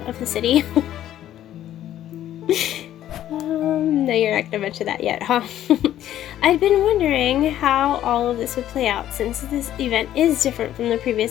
of the city? No, you're not gonna mention that yet, huh? I'd been wondering how all of this would play out since this event is different from the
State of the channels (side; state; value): right; quieter; 12.1 dB